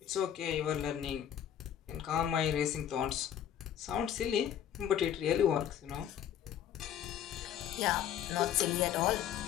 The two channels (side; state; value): right; quieter; 10.1 dB